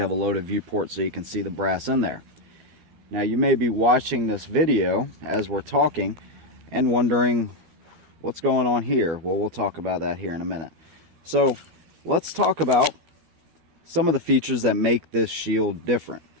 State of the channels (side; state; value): left; late; 12 ms